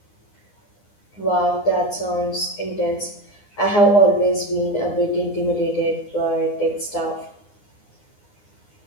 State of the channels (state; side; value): late; right; 9.8 ms